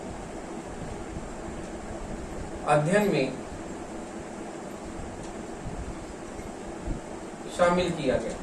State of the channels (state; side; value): identical; both; correlation 1.00